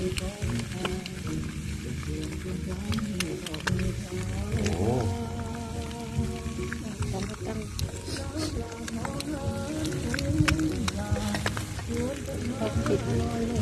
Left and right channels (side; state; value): both; identical; correlation 1.00